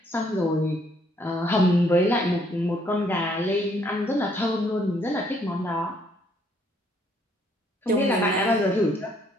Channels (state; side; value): normal; both; correlation 0.67